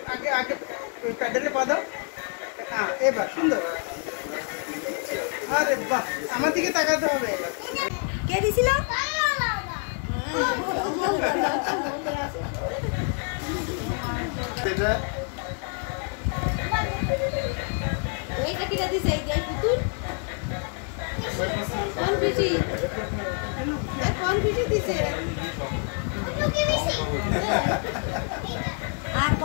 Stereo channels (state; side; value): quieter; right; 39.4 dB